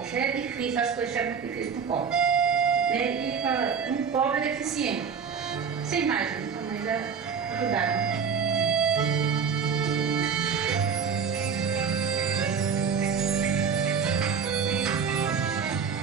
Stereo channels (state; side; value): quieter; left; 6.5 dB